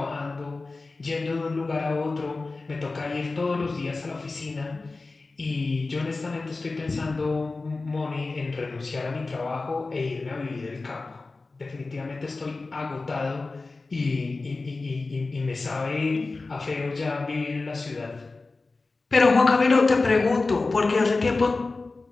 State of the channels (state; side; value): quieter; right; 3.6 dB